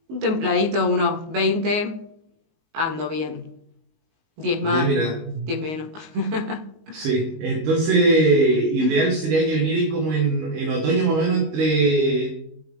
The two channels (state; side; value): late; left; 19 ms